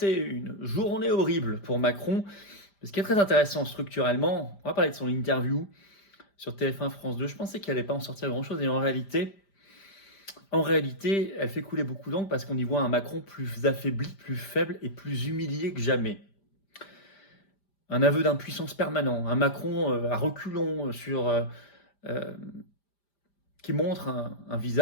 une journée horrible pour Macron. Ce qui est très intéressant structurellement, on va parler de son interview sur TF1 France 2. Je pensais qu'elle n'allait pas en sortir grand-chose et en réalité, elle fait couler beaucoup d'encre parce qu'on y voit un Macron plus affaibli, plus faible et plus humilié que jamais. Un aveu d'impuissance permanent, un Macron à reculons euh, qui montre un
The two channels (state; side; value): late; right; 5.0 ms